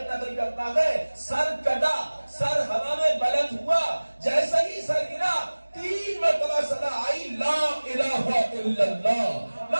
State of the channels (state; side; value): inverted; both; correlation -1.00